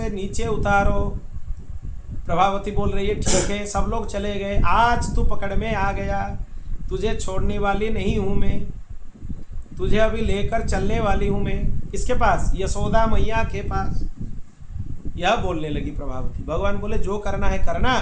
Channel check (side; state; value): both; identical; correlation 1.00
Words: नीचे उतारो। प्रभावती बोल रही है ठीक है, सब लोग चले गए, आज तू पकड़ में आ गया, तुझे छोड़ने वाली नहीं हूँ मैं, तुझे अभी लेकर चलने वाली हूँ मैं। किसके पास? यशोदा मैया के पास। यह बोलने लगी प्रभावती। भगवान बोले जो करना है करना,